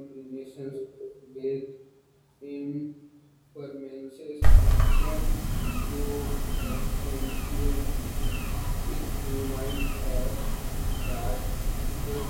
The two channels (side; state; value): both; identical; correlation 1.00